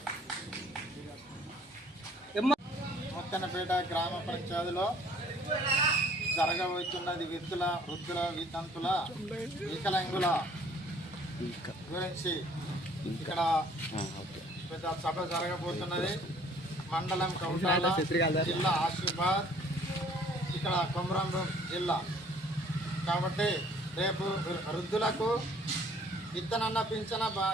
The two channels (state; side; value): normal; both; correlation 0.57